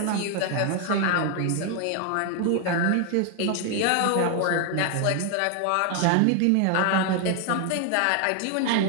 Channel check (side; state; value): both; different; correlation 0.00